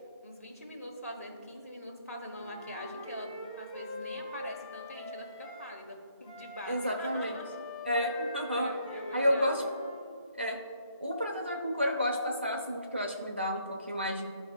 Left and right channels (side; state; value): both; inverted; correlation -0.66